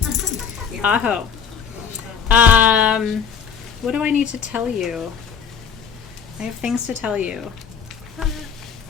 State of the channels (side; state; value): right; quieter; 7.1 dB